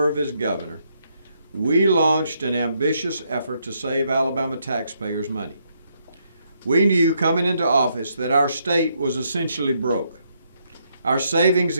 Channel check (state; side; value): inverted; both; correlation -0.75